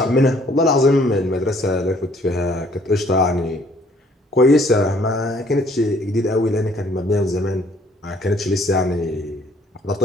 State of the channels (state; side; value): normal; both; correlation 0.61